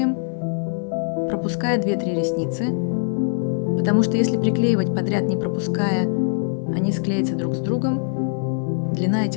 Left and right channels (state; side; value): silent; right; 57 dB below the other